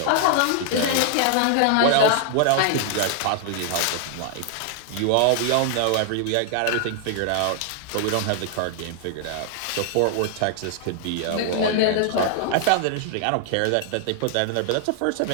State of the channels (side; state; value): both; different; correlation 0.00